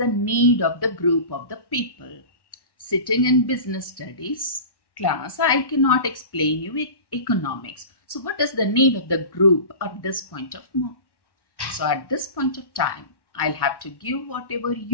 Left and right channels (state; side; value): late; right; 1.1 ms